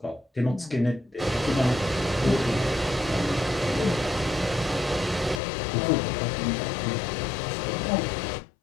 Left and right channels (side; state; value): right; drops out; at 5.4 s